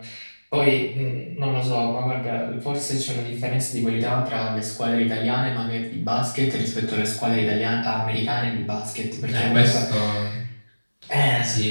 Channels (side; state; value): both; inverted; correlation -1.00